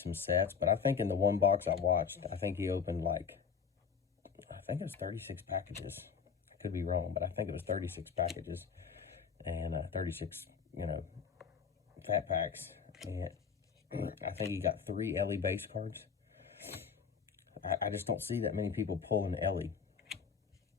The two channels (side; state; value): right; quieter; 6.4 dB